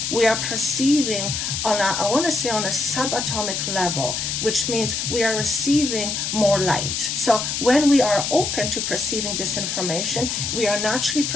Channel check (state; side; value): noise; left; hiss, 2 dB below the sound